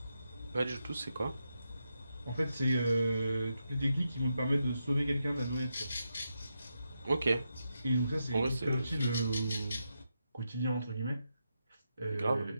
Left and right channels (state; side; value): inverted; both; correlation -0.85